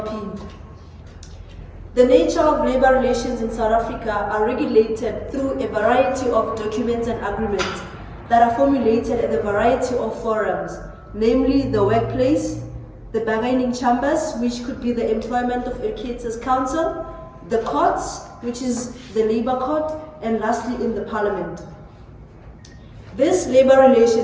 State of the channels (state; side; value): identical; both; correlation 1.00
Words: The nature of labor relations in South Africa are regulated through a variety of documents and agreements that are formulated at a variety of forums, namely the workplace, the bargaining chambers, which could be the Employment of Educators Council, the courts, which is the Labour Court, and lastly in the Parliament. These labor